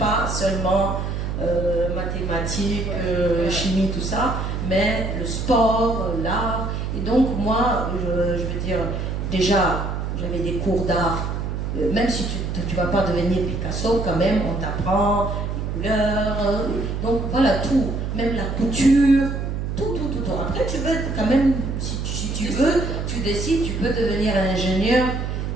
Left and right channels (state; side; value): noise; right; hum, 3 dB below the sound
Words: seulement mathématiques, chimie, tout ça, mais le sport, l'art. Et donc moi, je veux dire, déjà, j'avais des cours d'art. Même si tu ne vas pas devenir Picasso, quand même, on t'apprend les couleurs. Donc voilà, tout. Même la couture, tout. Après, tu veux quand même, si tu veux, tu décides, tu peux devenir ingénieur,